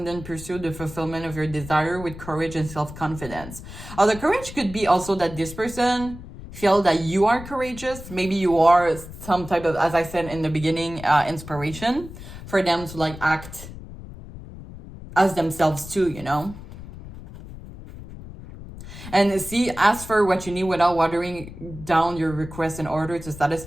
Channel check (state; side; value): noise; left; rumble, 14 dB below the sound